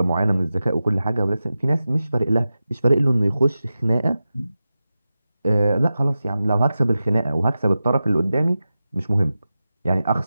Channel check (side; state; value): both; inverted; correlation -0.93